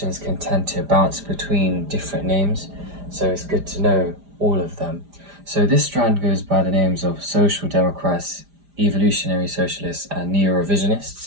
can tend to bounce between different names, so it's good to know all of them. So this strand goes by the names of social democrats, evolutionary socialists, and neo-revisionists,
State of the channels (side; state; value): left; late; 5.0 ms